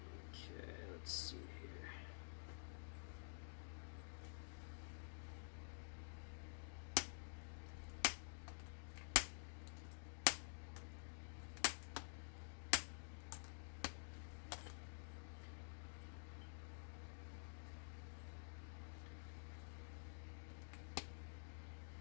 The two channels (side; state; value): right; silent; digital silence